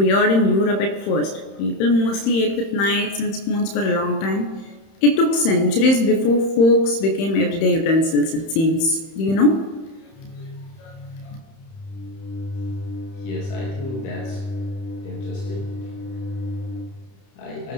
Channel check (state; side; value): late; right; 31 ms